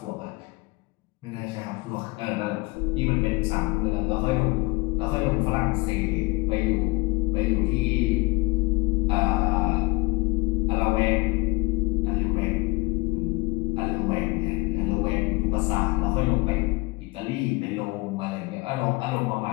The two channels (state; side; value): quieter; right; 24.8 dB